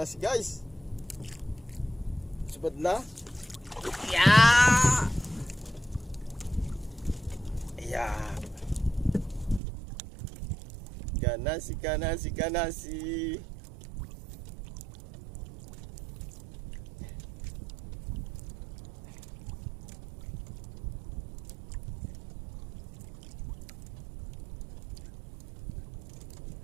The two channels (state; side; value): drops out; left; at 9.6 s